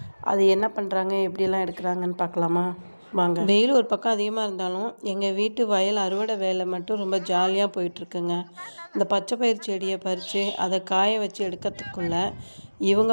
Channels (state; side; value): inverted; both; correlation -1.00